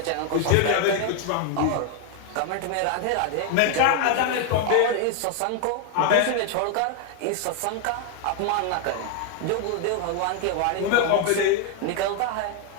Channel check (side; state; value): both; different; correlation 0.00